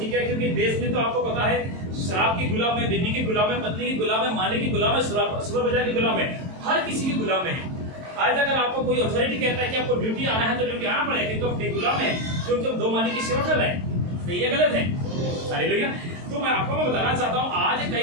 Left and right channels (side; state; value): left; late; 23 ms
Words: है, क्योंकि देश में तो आपको पता है शराब की गुलाम है, बीवी की गुलाम है, पत्नी की गुलाम है, मालिक की गुलाम है, सुपर बाजार की गुलाम है, हर किसी की गुलाम है। आज अगर आपको कोई अथॉरिटी कहता है कि आपको ड्यूटी आना है तो ड्यूटी आना पड़ेगा, क्योंकि आप एक गुलाम है, क्योंकि हम दो मालिक की सेवा कर रहे हैं। सही है गलत है? हालेलुया। तो मैं आपको बताना चाहता हूँ आज